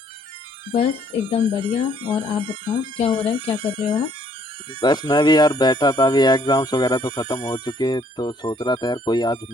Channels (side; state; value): both; normal; correlation 0.64